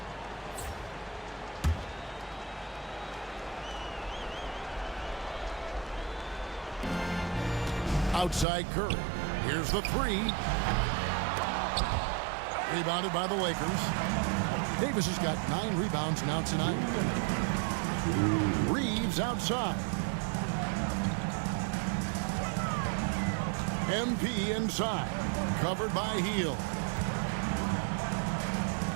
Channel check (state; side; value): drops out; left; at 8.5 s